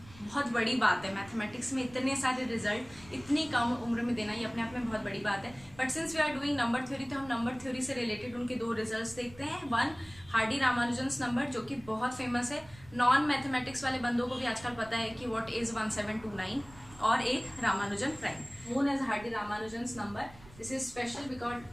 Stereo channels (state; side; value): noise; right; rumble, 21 dB below the sound